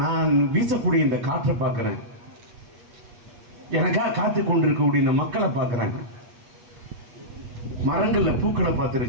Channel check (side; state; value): left; late; 8.3 ms